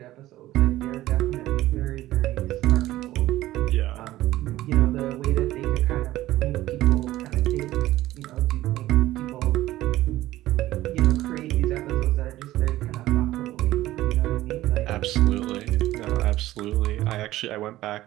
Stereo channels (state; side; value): quieter; left; 15.6 dB